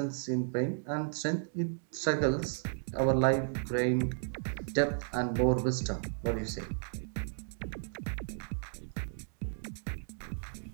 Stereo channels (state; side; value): silent; left; digital silence